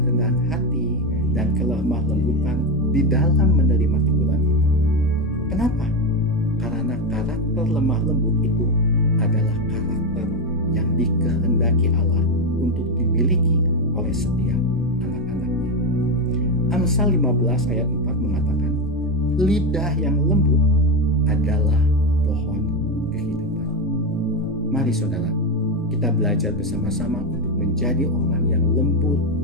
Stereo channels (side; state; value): both; normal; correlation 0.10